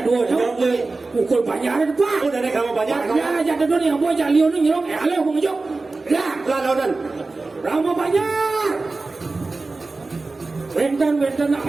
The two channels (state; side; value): quieter; left; 3.6 dB